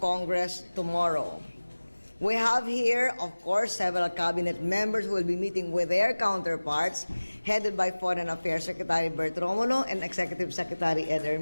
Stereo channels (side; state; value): both; inverted; correlation -1.00